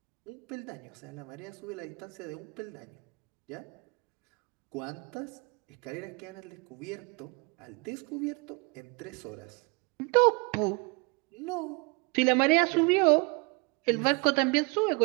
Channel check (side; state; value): left; quieter; 30.0 dB